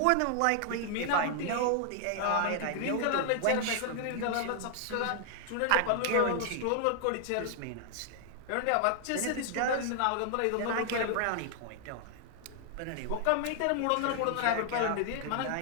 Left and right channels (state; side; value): different; both; correlation 0.00